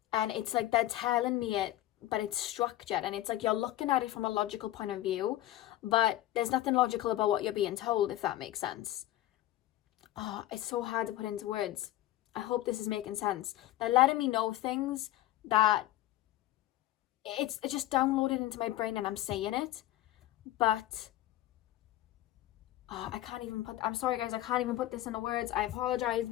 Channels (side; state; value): right; quieter; 14.7 dB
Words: and it's like they're telling me it, but it's structured, and it's like you're looking at it from a logical point of view, but there's nothing logical about what you're being told, if that makes sense. Oh, it's so hard to put into words. I hope this is making sense. They're letting me know things that it's just downloaded into my brain, and I'm saying it, but I can't even I'm sorry guys, I can't even put this into words. I apologize,